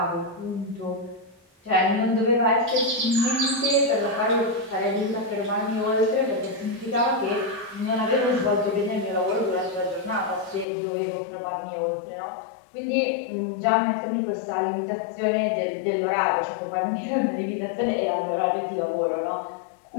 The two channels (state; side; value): drops out; right; at 10.7 s